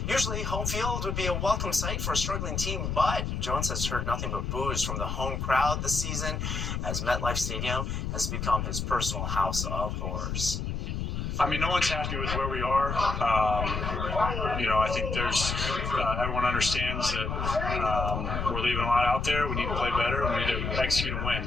Usually, home field would be a welcome sight for a struggling team, but Jones has heard nothing but boos from the home crowd this season as MetLife Stadium has become his personal house of horrors. I mean, no one's happy with where we are. I think there's everyone understands that we're leaving a lot out there. We need to play better. We need to execute and win.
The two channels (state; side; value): noise; left; rumble, 2 dB below the sound